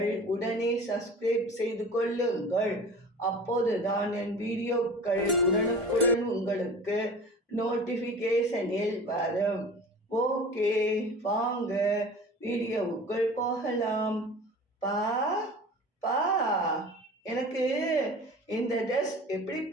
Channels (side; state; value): both; normal; correlation 0.39